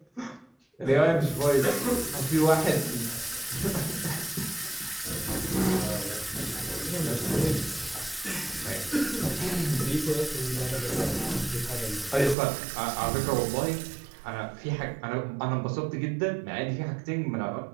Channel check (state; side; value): drops out; left; at 12.4 s